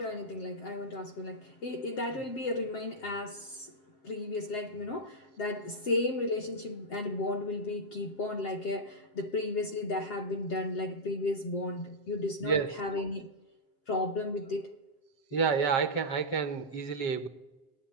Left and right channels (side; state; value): right; late; 7.5 ms